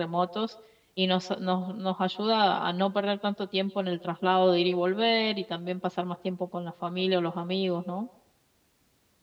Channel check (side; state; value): both; identical; correlation 1.00